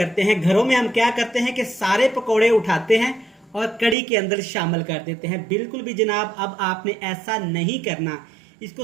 हैं, घरों में हम क्या करते हैं कि सारे पकोड़े उठाते हैं और कड़ी के अंदर शामिल कर देते हैं। बिल्कुल भी जनाब अब आपने ऐसा नहीं करना। इसको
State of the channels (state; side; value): drops out; left; at 4.0 s